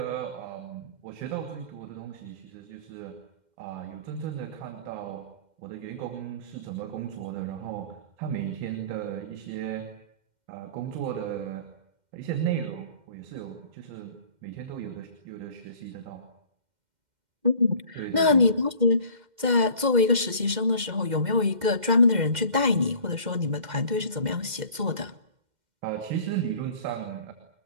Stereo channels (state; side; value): late; left; 2.1 ms